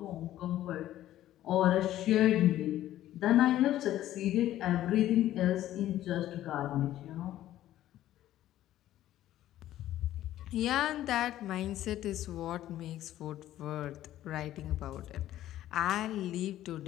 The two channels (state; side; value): quieter; right; 13.4 dB